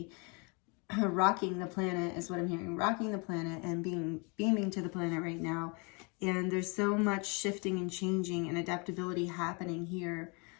rocking the planet is what I'm hearing. Rocking the planet and beaming to the planet right now. And there's so much shifting and changing and adaptability happening here.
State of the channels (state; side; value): quieter; right; 32.4 dB